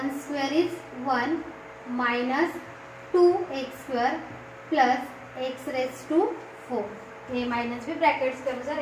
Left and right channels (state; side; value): identical; both; correlation 1.00